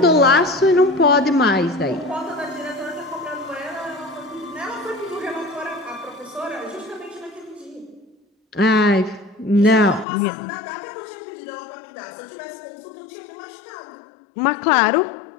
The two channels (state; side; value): drops out; right; at 10.1 s